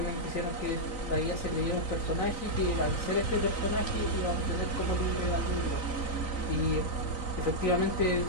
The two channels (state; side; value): late; right; 3.9 ms